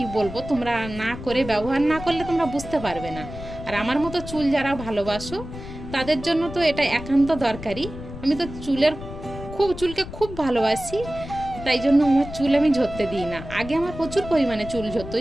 বলবো, তোমরা না করে ব্যবহার না করলে তোমরা বুঝতে পারবে না। আর আমার মতো চুল যারা ভালোবাসো তাদের জন্য তো এটা একান্ত দরকারি। আমি তো চুলকে খুব ভালোবাসি, তাই জন্য আমার চুল আমি ঝরতে দিই না। আগে আমার প্রচুর পরিমাণে চুল ঝরতো,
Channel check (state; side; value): noise; left; rumble, 11 dB below the sound